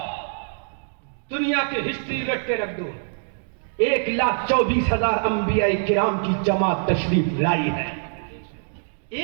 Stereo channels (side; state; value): left; silent; digital silence